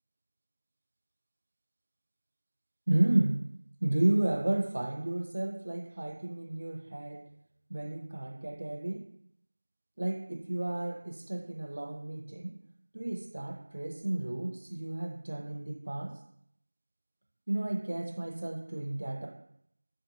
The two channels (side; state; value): both; inverted; correlation -1.00